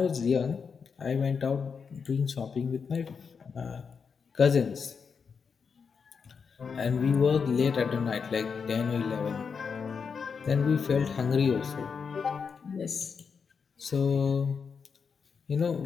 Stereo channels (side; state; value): right; quieter; 5.9 dB